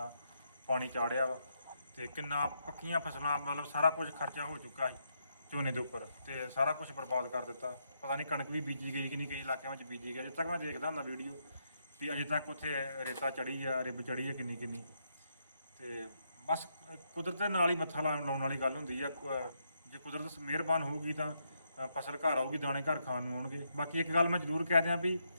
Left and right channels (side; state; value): both; inverted; correlation -0.79